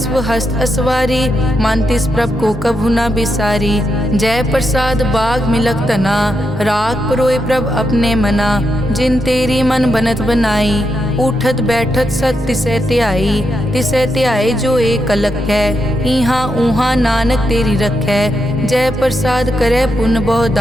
हस्त असवारी, मन तिस प्रभ को कभु न बिसारी। जय प्रसाद बाग मिलक तना, राख परोए प्रभ अपने मना। जिन तेरी मन बनत बनाई, उठत बैठत सत तिसै ध्याई जो एक अलख है। इहाँ ऊहाँ नानक तेरी रखै, जय प्रसाद करे पुन बहु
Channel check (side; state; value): both; normal; correlation 0.83